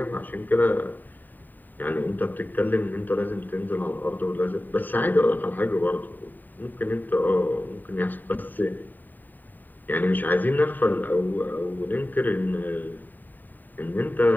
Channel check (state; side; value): late; right; 0.089 ms